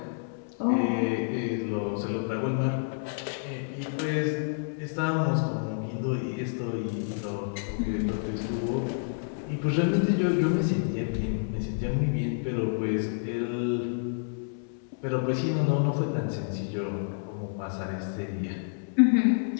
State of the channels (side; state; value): right; silent; 59 dB below the other